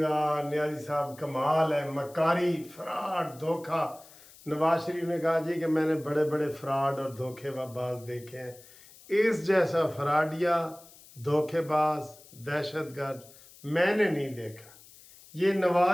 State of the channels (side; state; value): left; noise; hiss, 22 dB below the sound